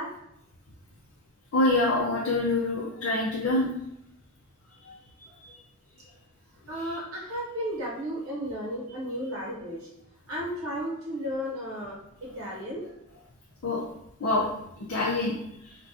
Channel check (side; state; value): both; normal; correlation 0.04